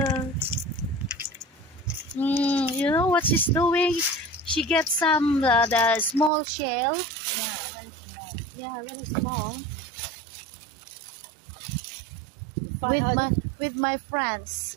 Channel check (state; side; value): drops out; left; at 6.3 s